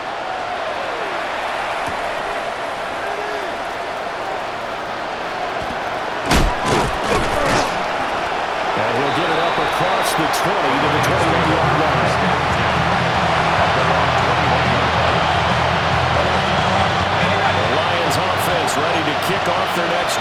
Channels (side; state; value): both; identical; correlation 1.00